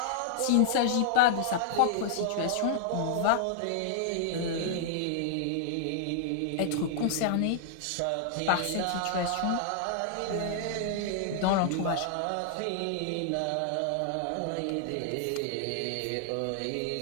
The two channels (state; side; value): different; both; correlation -0.01